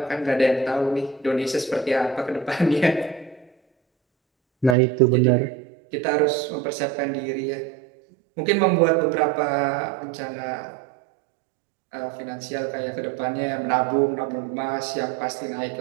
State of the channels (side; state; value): left; drops out; at 4.8 s